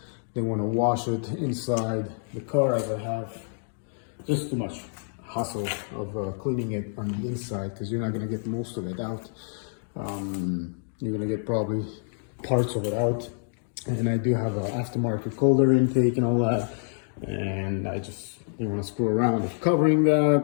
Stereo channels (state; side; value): silent; right; digital silence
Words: They want to wash it inside the car, as I have just too much hassle of cleaning it on the inside, because you're not going to get most of it out. You're going to get probably parts of it out. And I do have an aftermarket colder intake and all that, and I just didn't want to screw around with covering